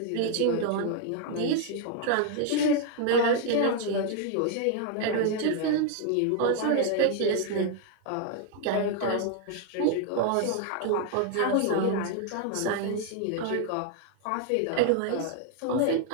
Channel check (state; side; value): different; both; correlation 0.00